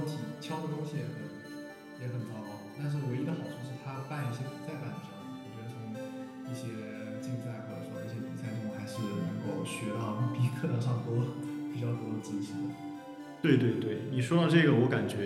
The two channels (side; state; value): both; identical; correlation 1.00